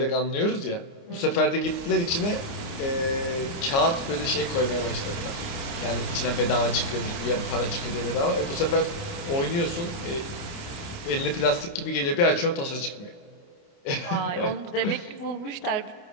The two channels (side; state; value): right; late; 29 ms